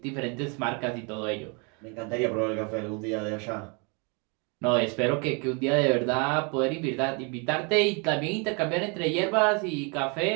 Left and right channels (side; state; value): left; quieter; 33.3 dB